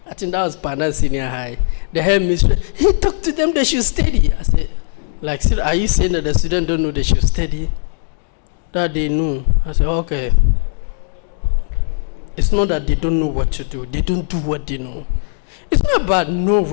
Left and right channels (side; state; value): right; silent; digital silence